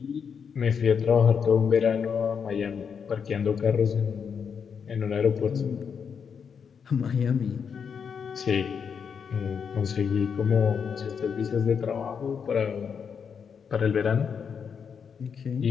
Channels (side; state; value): right; quieter; 6.7 dB